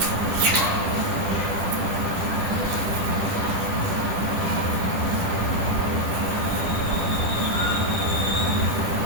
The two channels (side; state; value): left; late; 10 ms